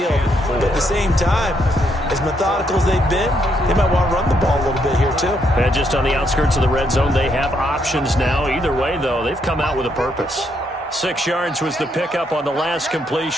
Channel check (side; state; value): both; normal; correlation 0.75